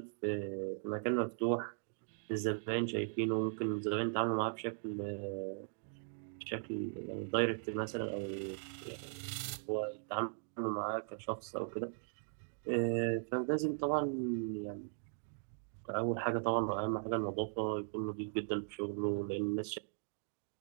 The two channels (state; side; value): silent; left; digital silence